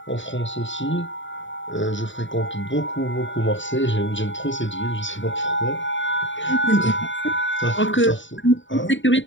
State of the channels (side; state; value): right; late; 0.55 ms